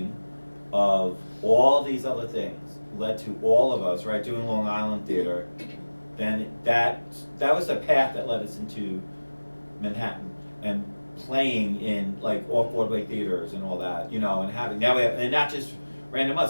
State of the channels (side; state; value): both; inverted; correlation -1.00